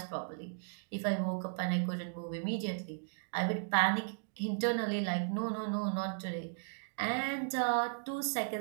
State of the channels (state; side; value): silent; left; digital silence